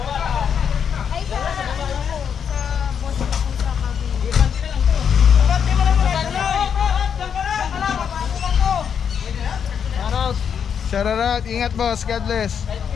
Shout out, ingat boss, God bless.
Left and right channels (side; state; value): right; quieter; 7.5 dB